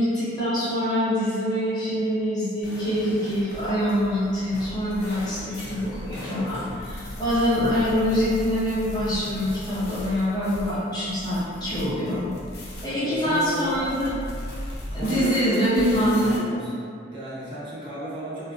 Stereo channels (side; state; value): both; normal; correlation 0.53